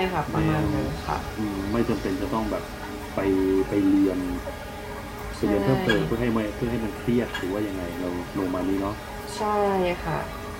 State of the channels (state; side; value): identical; both; correlation 1.00